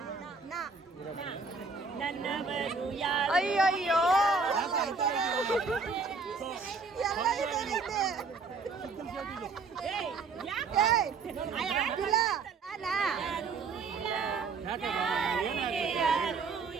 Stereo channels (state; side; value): quieter; left; 4.5 dB